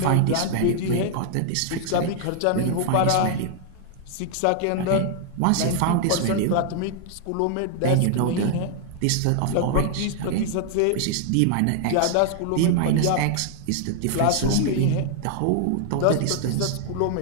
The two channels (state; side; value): different; both; correlation 0.00